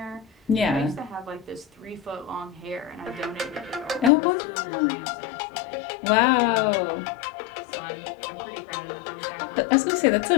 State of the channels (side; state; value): right; drops out; at 4.1 s